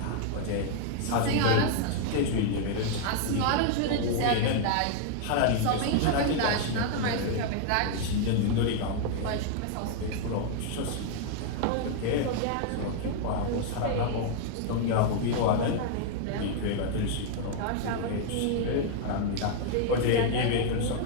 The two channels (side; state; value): both; different; correlation 0.00